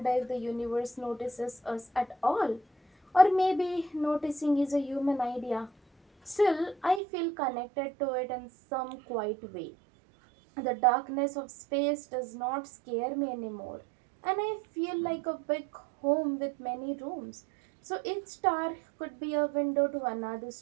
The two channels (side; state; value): left; drops out; at 7.0 s